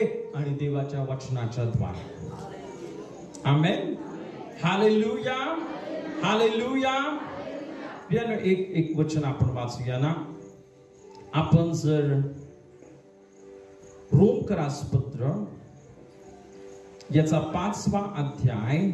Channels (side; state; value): both; identical; correlation 1.00